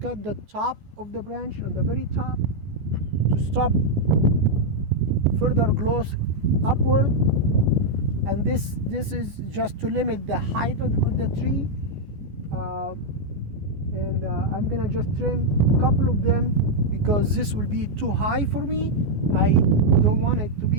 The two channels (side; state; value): left; late; 14 ms